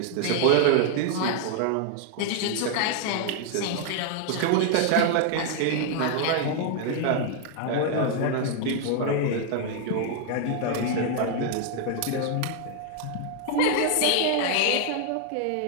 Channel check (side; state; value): both; different; correlation 0.00